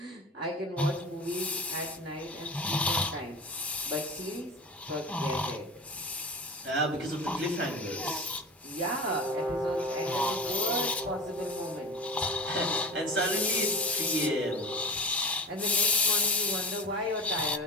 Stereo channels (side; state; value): both; normal; correlation 0.35